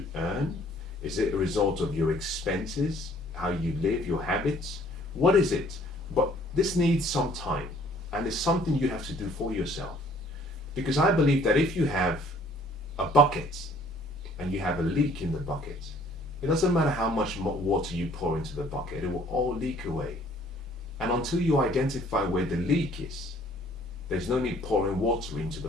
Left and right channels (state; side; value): noise; right; hum, 26 dB below the sound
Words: earn? Is it a result of your expenses? how you live, your habits. What is it? But this needs some time, and it's something you have to do for yourself. Because I believe that if you have a bucket and you have a leak in the bucket, it doesn't matter how much water you pour into the bucket, it will all leak away. And until you identify where the leak is, there's no need pouring water into the